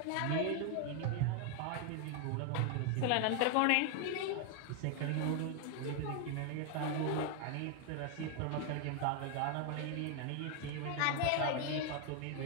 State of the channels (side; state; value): both; different; correlation 0.00